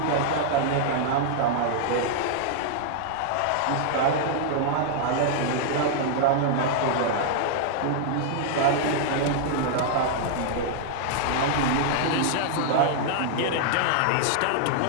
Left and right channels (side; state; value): both; different; correlation -0.01